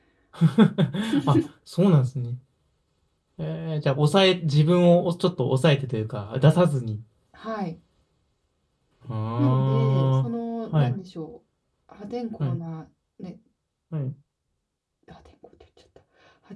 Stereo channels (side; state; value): both; identical; correlation 1.00